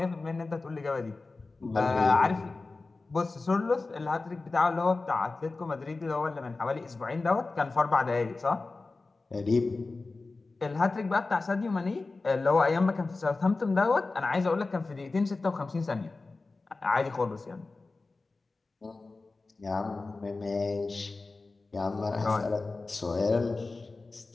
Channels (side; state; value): right; quieter; 3.6 dB